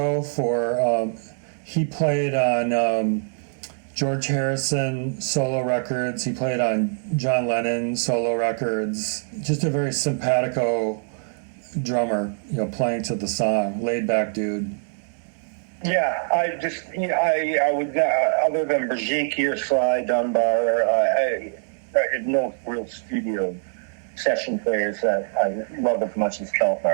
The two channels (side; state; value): left; silent; digital silence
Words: for, he played on George Harrison solo records, he played on John Lennon solo records, just a very simpatico drummer, playing to the song, laid back dude. Yeah, I would, other than Brigitte or Sly Dunbar, I had no real studio session players that I loved as much as